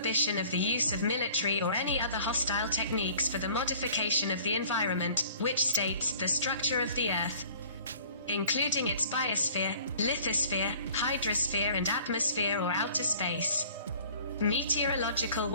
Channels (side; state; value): both; inverted; correlation -0.51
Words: of the use of military or any other hostile techniques for the modification of the environment, which states the structure of the Earth, including its biosphere, lithosphere, hydrosphere and atmosphere or outer space. Meteorological